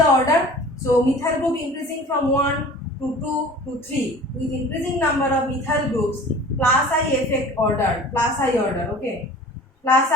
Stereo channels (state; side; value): normal; both; correlation 0.44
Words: order? So methyl group increasing from 1 to 2 to 3. With increasing number of methyl groups, plus I effect order, plus I order, okay. Plus